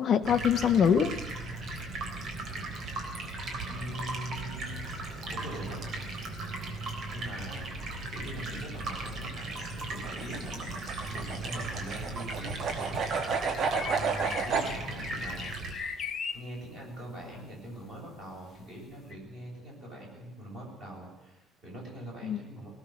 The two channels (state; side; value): normal; both; correlation 0.59